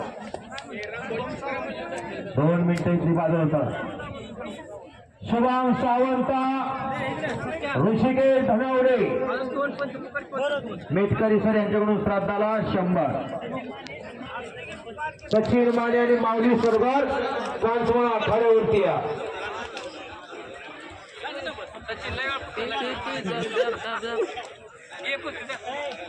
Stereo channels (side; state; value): both; identical; correlation 1.00